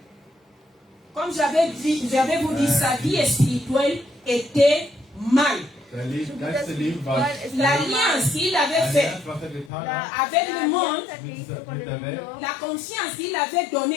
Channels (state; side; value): drops out; right; at 9.7 s